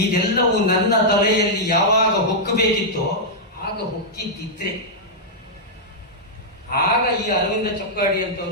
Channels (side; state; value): both; normal; correlation -0.08